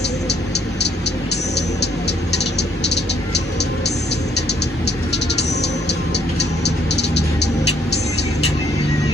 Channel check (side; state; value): both; normal; correlation 0.66